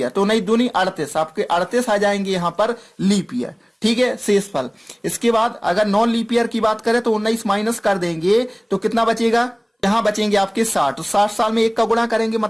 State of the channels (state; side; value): identical; both; correlation 1.00